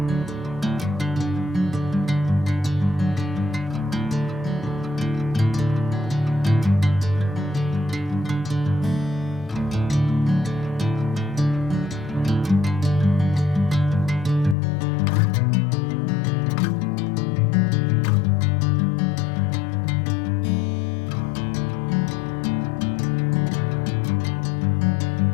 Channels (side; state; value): right; drops out; at 14.6 s